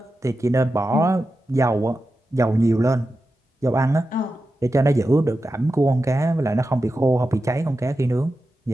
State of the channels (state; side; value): normal; both; correlation 0.91